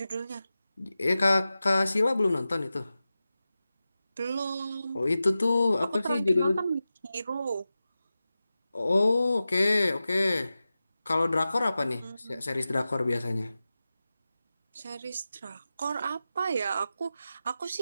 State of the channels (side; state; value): both; inverted; correlation -0.94